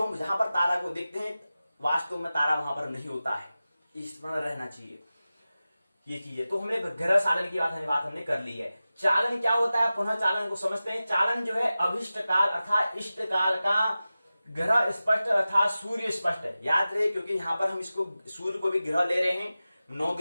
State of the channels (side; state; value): both; inverted; correlation -0.95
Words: हम जहां पर तारा को देखते हैं वास्तव में तारा वहां पर नहीं होता है, इस तरह रहना चाहिए ये चीजें। तो हमने ग्रह चालन की बात हमने कर ली है। चालन क्या होता है, पुनः चालन को समझते हैं। चालन जो है अभिष्ट काल अर्थात इष्ट काल का ग्रह स्पष्ट अर्थात सूर्य स्पष्ट है। याद रहे, क्योंकि यहाँ पर हम इसको सूर्य को भी ग्रह ले रहे हैं, 9